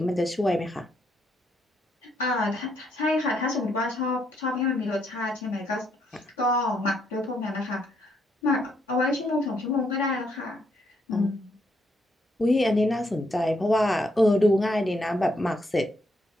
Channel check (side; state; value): both; normal; correlation 0.75